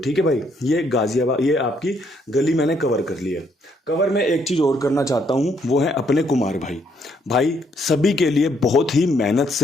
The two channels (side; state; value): both; normal; correlation 0.71